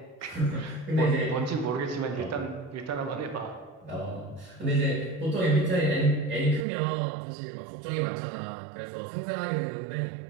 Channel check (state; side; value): drops out; left; at 6.7 s